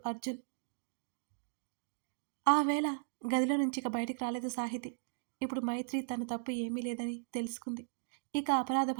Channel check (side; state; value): left; silent; digital silence